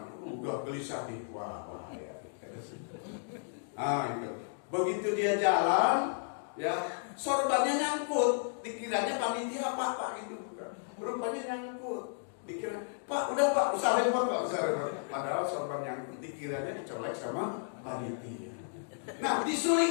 udah gelisah nih, wah bahaya. Itu. Begitu dia jalan, ya sorbannya nyangkut, dikiranya panitia apa gitu, rupanya nyangkut, dikira Pak udah Pak usah repot. Padahal sorban nyangkut dikiranya dicolek sama panitia. Nah di Suling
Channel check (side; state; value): right; silent; digital silence